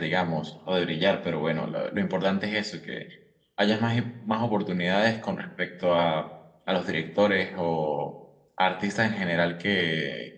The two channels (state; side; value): identical; both; correlation 1.00